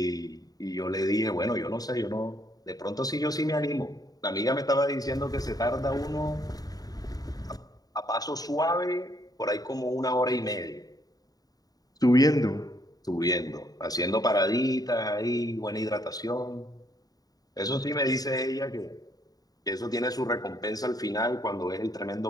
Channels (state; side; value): late; right; 0.18 ms